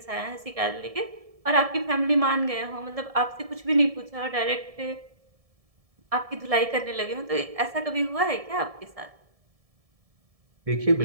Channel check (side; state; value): left; late; 1.7 ms